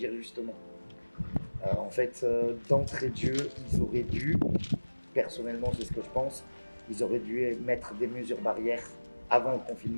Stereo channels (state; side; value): inverted; both; correlation -1.00